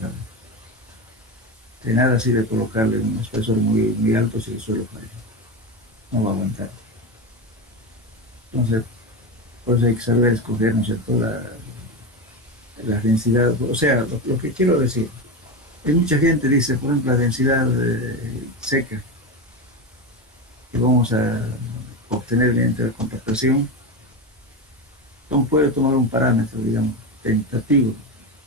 De nada sirve colocarle un espesor muy alto si el suelo falla. No va a aguantar. Entonces, por eso hay que saber escoger, ¿no es cierto?, la densidad. O sea, lo que quiero decir, hay mucha gente dice, por ejemplo, la densidad seca que vamos a obtener mediante la compactación. Entonces puede tomar un parámetro, digamos, tentativo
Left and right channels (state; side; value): normal; both; correlation 0.18